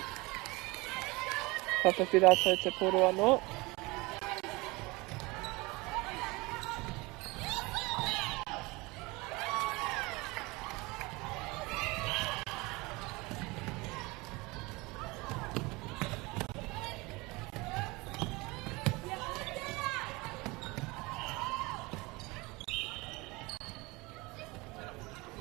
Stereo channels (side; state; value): left; quieter; 24.0 dB